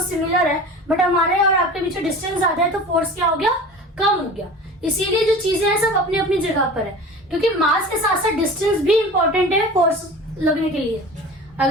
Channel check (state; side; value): normal; both; correlation 0.37